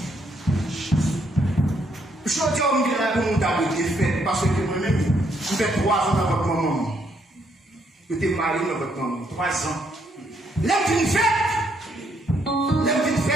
Je dis à mon gars pour mon dame de fait, parce que moi-même, je fais 3 ans dans votre maman. Je suis marié dans votre maman, 3 ans. L'homme d'une fête,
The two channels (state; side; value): normal; both; correlation 0.73